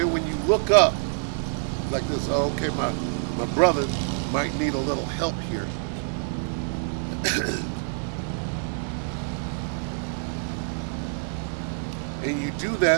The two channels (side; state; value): left; silent; digital silence